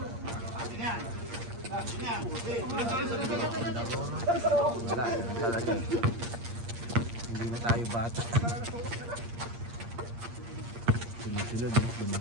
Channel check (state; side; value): late; left; 8.6 ms